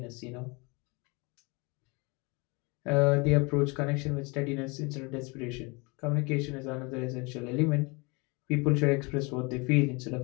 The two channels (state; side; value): quieter; right; 28.4 dB